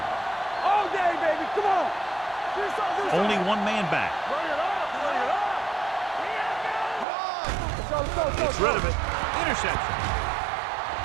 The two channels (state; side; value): drops out; left; at 7.1 s